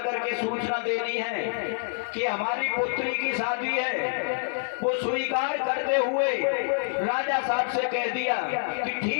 के सूचना देनी है कि हमारी पुत्री की शादी है। वो स्वीकार करते हुए राजा साहब से कह दिया कि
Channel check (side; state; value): right; silent; digital silence